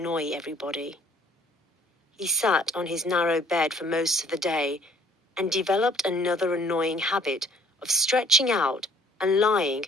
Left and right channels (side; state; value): both; normal; correlation 0.58